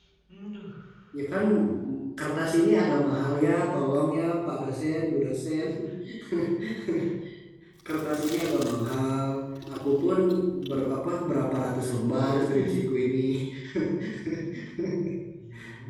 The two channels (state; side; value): identical; both; correlation 1.00